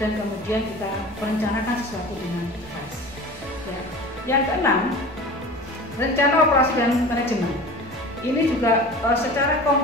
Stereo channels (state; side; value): normal; both; correlation 0.37